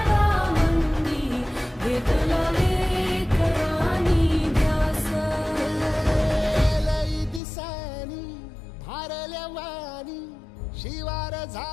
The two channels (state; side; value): drops out; right; at 7.4 s